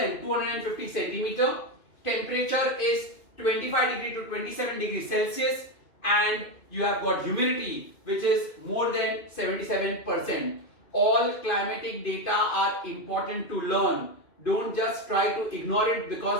250 centimeter. Temperature is 25 degree to 27 degrees Celsius, and you have got humidity which is more than 77%. All climatic data are important to learn. Don't just try to ignore it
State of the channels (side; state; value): right; late; 2.5 ms